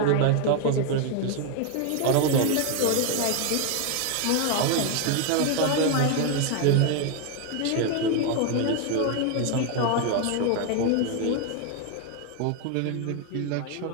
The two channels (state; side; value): different; both; correlation 0.01